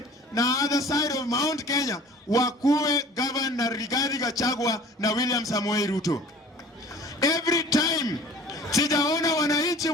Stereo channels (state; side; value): normal; both; correlation 0.46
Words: na other side of Mount Kenya wakuwe governor Rigathi Gachagua na William Samoei Ruto. Every time sijaona wananchi